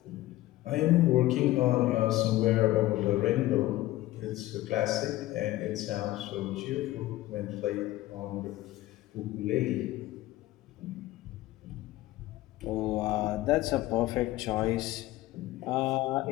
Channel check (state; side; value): quieter; right; 16.5 dB